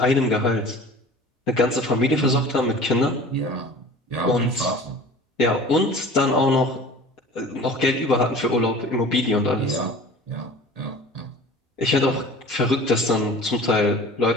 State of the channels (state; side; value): normal; both; correlation 0.42